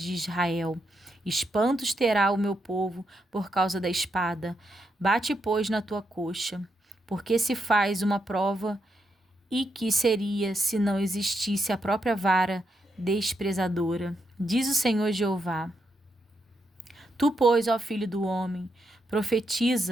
Israel. Espantos terá o meu povo por causa da espada. Bate, pois, na tua coxa, porque se faz uma prova, e que seria se não existisse a própria vara desprezadora, diz o Senhor Jeová. Tu, pois, ó filho do homem,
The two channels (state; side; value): normal; both; correlation 0.82